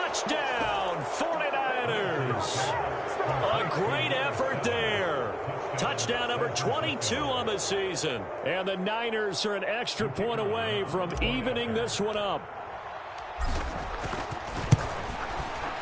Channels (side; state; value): both; identical; correlation 1.00